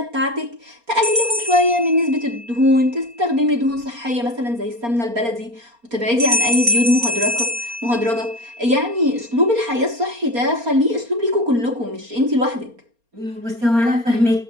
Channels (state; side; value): late; left; 4.3 ms